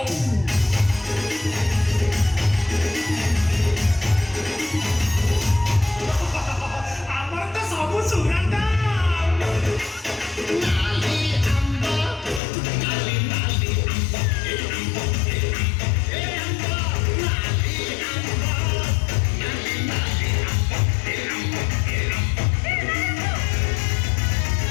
আমার তো সব সুগন্ধা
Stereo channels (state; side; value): drops out; right; at 12.4 s